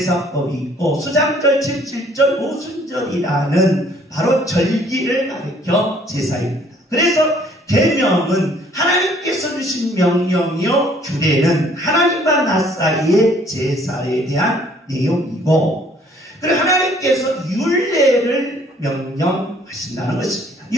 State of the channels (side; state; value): both; normal; correlation 0.59